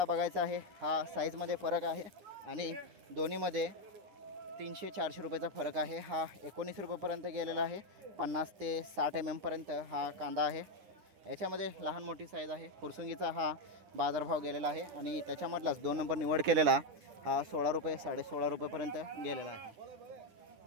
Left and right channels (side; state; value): left; late; 9.9 ms